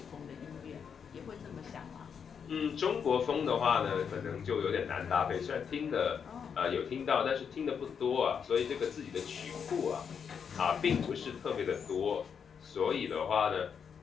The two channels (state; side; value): quieter; right; 6.9 dB